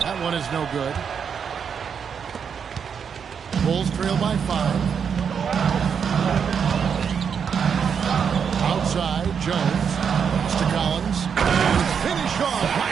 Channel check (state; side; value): quieter; left; 7.0 dB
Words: one is no good. Bulls trail by 5. Outside, Jones. To Collins. And finish off